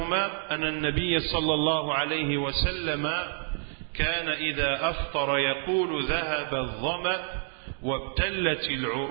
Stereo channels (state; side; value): silent; left; digital silence